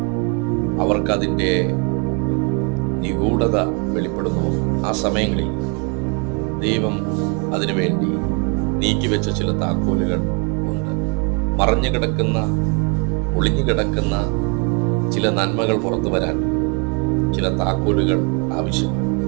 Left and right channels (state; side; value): quieter; left; 34.5 dB